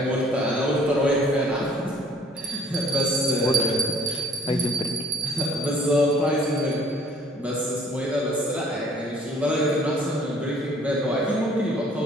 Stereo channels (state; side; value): normal; both; correlation 0.58